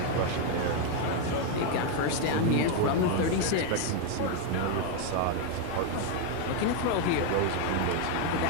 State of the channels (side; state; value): both; different; correlation 0.01